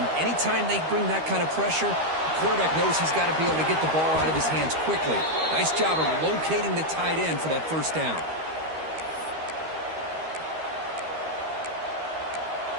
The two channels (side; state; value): left; late; 13 ms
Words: anytime they bring that kind of pressure, the quarterback knows he's got to be able to get the ball out of his hands quickly. Nice job of locating the tight end for that first down.